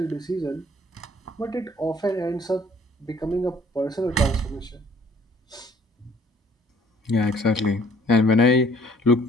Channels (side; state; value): both; normal; correlation 0.57